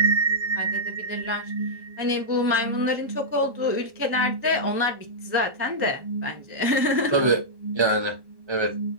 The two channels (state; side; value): late; left; 1.1 ms